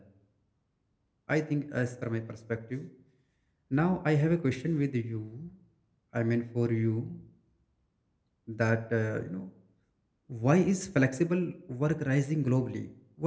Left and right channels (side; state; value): both; identical; correlation 1.00